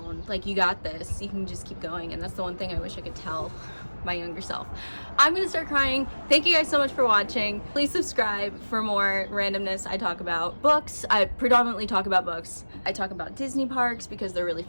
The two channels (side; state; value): both; inverted; correlation -1.00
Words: Like, you got this, you can just keep going. And that's the one thing I wish I could tell my younger self. I'm gonna start crying. Thank you guys so much for watching. Please subscribe for more randomness. I talk about books. I predominantly talk about books. I talk about Disney parks because they're really